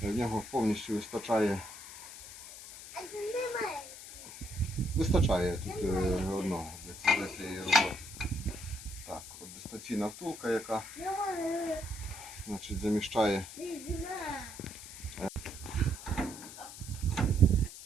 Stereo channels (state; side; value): noise; left; hiss, 13 dB below the sound